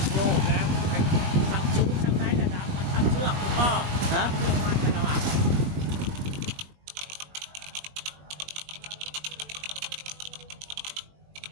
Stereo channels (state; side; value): late; left; 20 ms